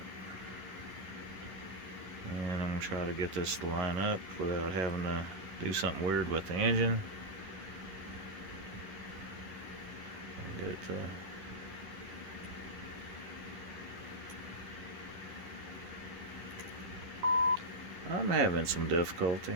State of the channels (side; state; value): left; late; 11 ms